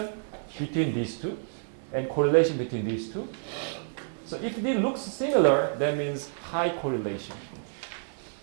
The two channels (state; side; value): silent; left; digital silence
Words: between these two and correlation between these two. So if it looks similar, that means high correlation.